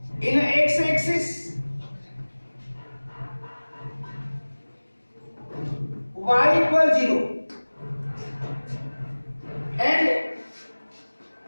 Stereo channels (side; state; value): both; inverted; correlation -1.00